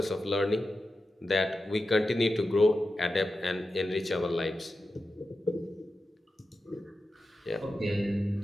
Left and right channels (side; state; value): both; normal; correlation 0.91